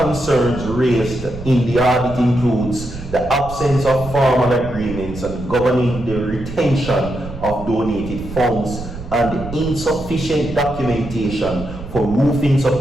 raised in the audit includes the absence of formal agreements and governing the retention of donated funds and the insufficient documentation for roofing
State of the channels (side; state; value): right; noise; rumble, 11 dB below the sound